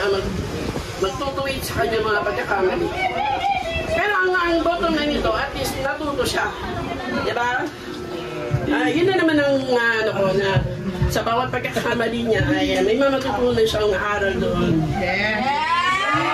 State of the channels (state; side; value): identical; both; correlation 1.00